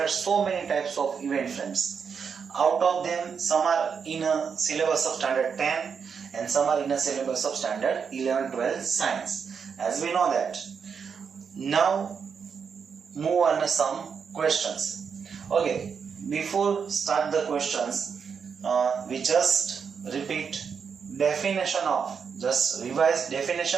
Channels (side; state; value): left; quieter; 6.4 dB